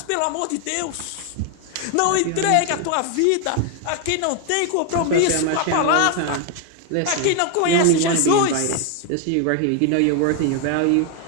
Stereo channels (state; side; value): different; both; correlation 0.01